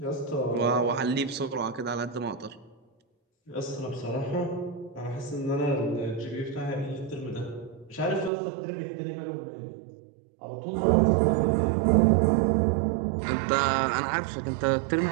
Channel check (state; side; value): drops out; left; at 8.3 s